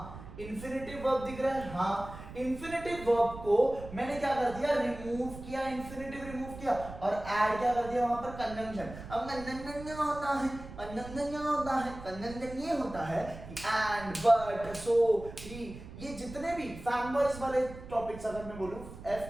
इंफिनिटिव वर्ब दिख रहा है। हाँ, इंफिनिटिव वर्ब को मैंने क्या कर दिया? रिमूव किया, इंफिनिटिव रिमूव किया और ऐड क्या कर दिया वहां पर? कंजंक्शन। अब कंजंक्शन होता है, कंजंक्शन होता है, कंजंक्शन ये होता है एंड, बट, सो, ही, ये जितने भी फैनबॉयज वाले टॉपिक्स अगर मैं बोलूं,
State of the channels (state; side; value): noise; right; rumble, 13 dB below the sound